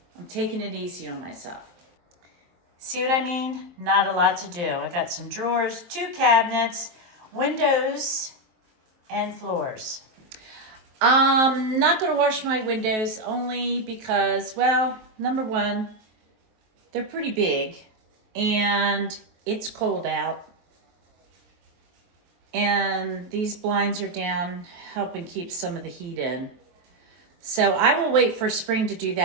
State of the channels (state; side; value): late; left; 23 ms